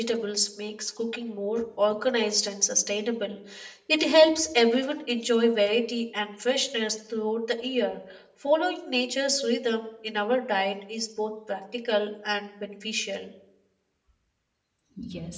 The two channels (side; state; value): both; identical; correlation 1.00